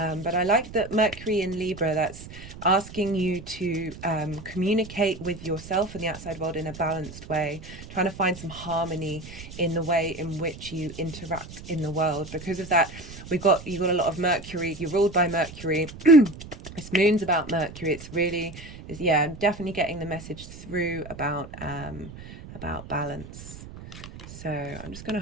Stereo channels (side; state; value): right; noise; rumble, 14 dB below the sound